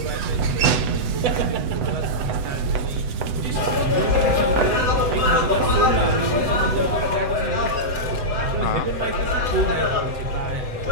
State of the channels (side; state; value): left; late; 8.1 ms